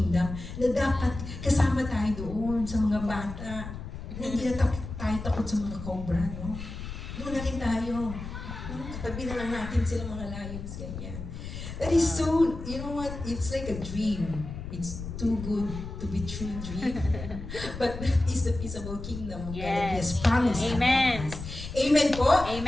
na dapat kasama tayo doon sa mga bata. Hindi na tayo takot sa mga cobra, no? Doon na rin tayo. Katabi na lang natin sila mga lions, ganyan. That is so, you know what? It's like a dream. It's too good to be true dream. But that is the peaceable kingdom of God that He has promised. Amen. us. Amen po?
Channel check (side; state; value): left; noise; rumble, 9 dB below the sound